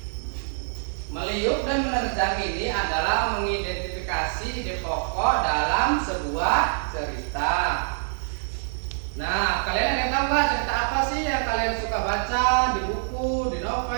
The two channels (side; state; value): left; silent; digital silence